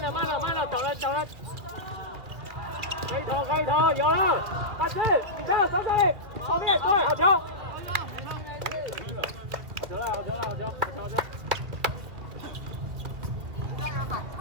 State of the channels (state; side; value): late; left; 2.2 ms